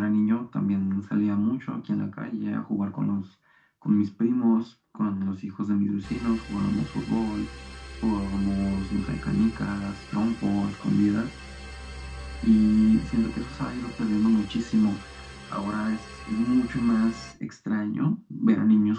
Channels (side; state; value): both; identical; correlation 1.00